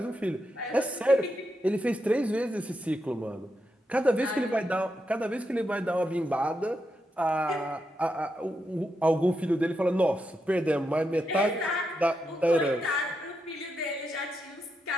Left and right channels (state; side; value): normal; both; correlation 0.84